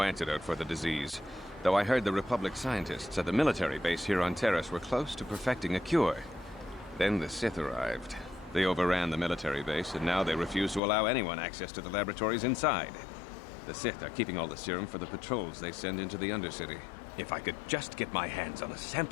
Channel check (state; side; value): drops out; right; at 10.8 s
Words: antidote for the disease, though I heard the Republic scientists at the military base here on Terrace were close to perfecting a cure. Then the Sith arrived. They overran the military base, and now they refuse to allow anyone access to the laboratories inside. The Sith are keeping all the serum for the patrols they send into the Undercity. If I could just get my hands on a